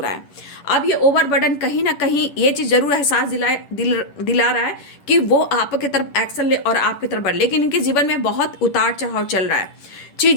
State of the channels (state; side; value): late; right; 10 ms